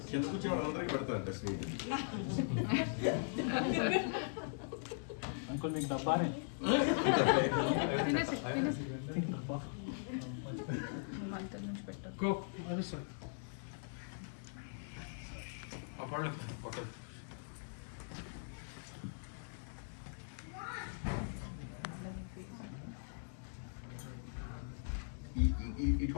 కింద కూర్చొని వాళ్ళందరికీ పెడతారంట స్వీట్ అంకుల్ మీకు డబ్బానే గో అది సార్ అప్పుడు ఓకే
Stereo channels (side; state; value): right; silent; digital silence